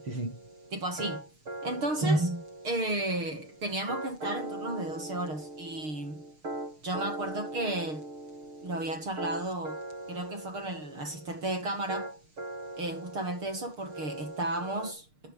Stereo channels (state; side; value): late; left; 6.6 ms